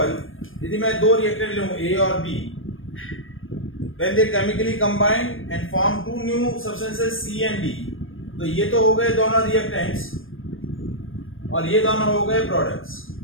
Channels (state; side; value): late; right; 0.59 ms